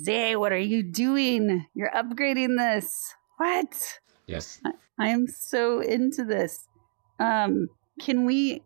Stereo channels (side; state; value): left; silent; digital silence